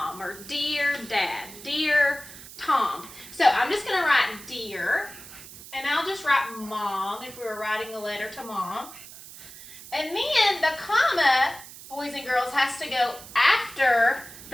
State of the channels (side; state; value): right; noise; hiss, 16 dB below the sound